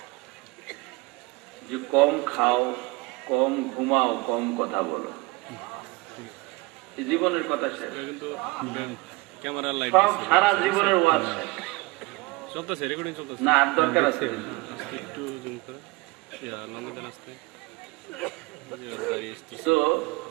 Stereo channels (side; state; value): left; quieter; 23.6 dB